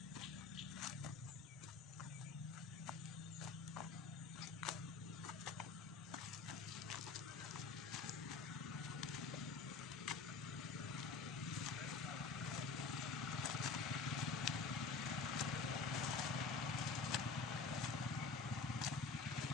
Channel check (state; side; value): quieter; right; 4.6 dB